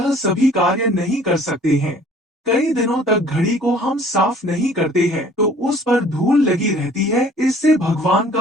सभी कार्य नहीं कर सकते हैं। कई दिनों तक घड़ी को हम साफ नहीं करते हैं तो उस पर धूल लगी रहती है, इससे भगवान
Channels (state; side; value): normal; both; correlation 0.53